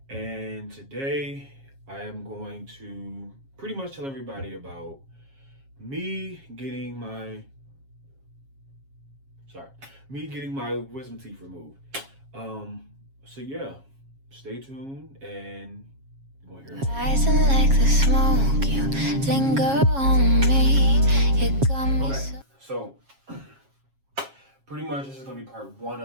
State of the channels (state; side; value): late; left; 7.3 ms